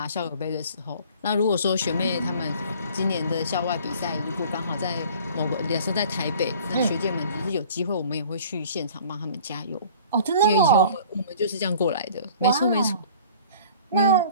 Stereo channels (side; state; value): both; inverted; correlation -0.48